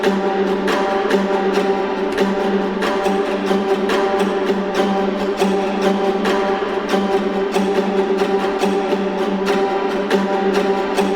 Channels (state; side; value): identical; both; correlation 1.00